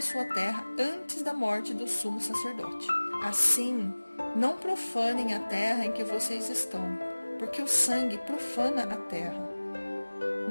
sua terra antes da morte do sumo sacerdote. Assim, não profanem a terra em que vocês estão, porque o sangue profana a terra.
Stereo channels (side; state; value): both; inverted; correlation -1.00